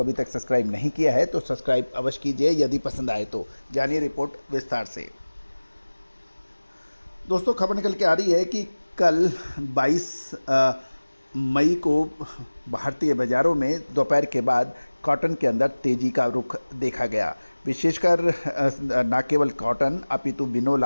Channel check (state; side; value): inverted; both; correlation -1.00